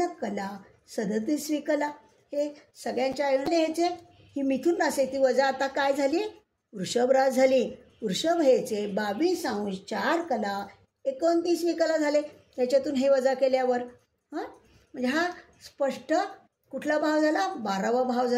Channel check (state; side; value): identical; both; correlation 1.00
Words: 37 विकला. हे सगळ्यांच्या अयन ह्याचे ही मिथुन रास आहे ती वजा आता काय झाली? वृषभ रास झाली. वृषभ ह्याचे 22°4 29 विकला झाले. त्याच्यातून हे वजा केल्यावर म्हणजे हा स्पष्ट कुठला भाव झाला? 12वा भाव